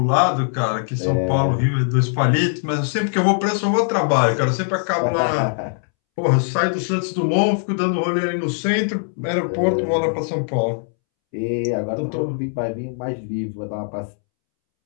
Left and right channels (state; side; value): silent; right; 65 dB below the other